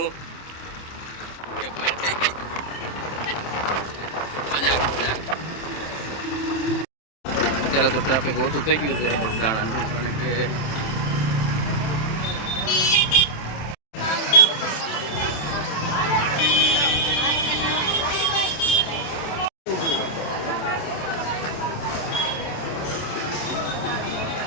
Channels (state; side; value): late; right; 27 ms